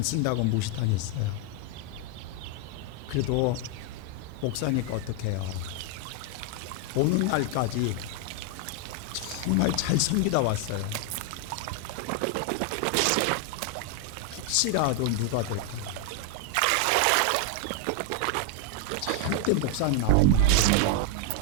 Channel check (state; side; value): different; both; correlation 0.00